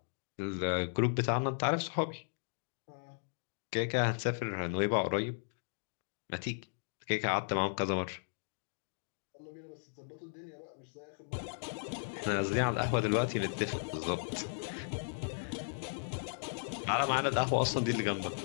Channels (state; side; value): silent; right; digital silence